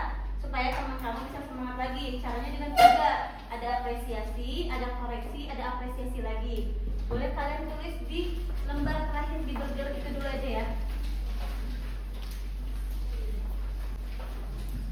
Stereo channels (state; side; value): identical; both; correlation 1.00